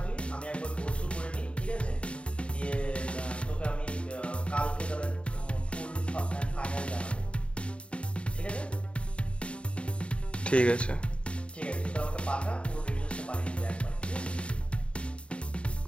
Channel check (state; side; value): late; right; 0.059 ms